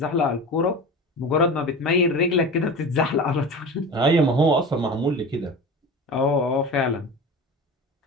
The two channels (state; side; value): normal; both; correlation 0.31